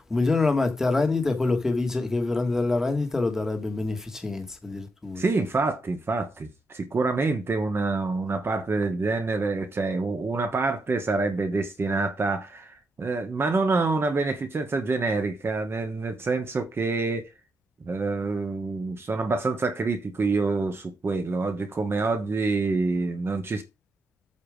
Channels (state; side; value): normal; both; correlation 0.82